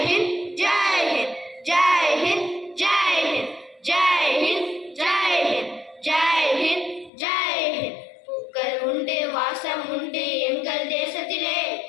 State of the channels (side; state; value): right; drops out; at 7.1 s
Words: ஹிந்த் ஜெய் ஹிந்த் ஜெய் ஹிந்த் ஜெய் ஹிந்த் ஜெய் ஹிந்த் ஜெய் ஹிந்த் ஜெய் ஹிந்த் ஜெய் ஹிந்த். பூக்கள் உண்டு வாசம் உண்டு எங்கள் தேசத்திலே,